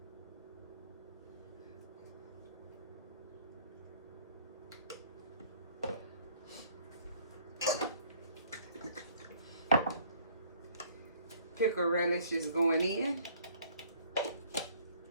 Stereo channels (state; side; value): inverted; both; correlation -0.57